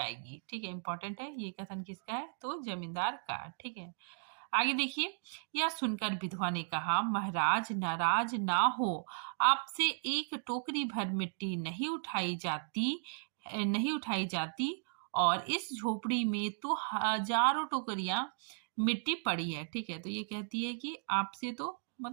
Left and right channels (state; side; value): silent; left; digital silence